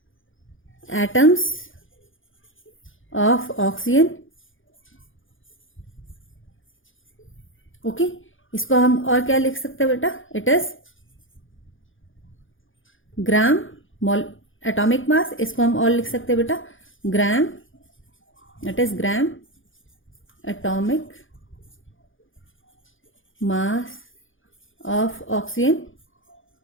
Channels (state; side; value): late; right; 0.58 ms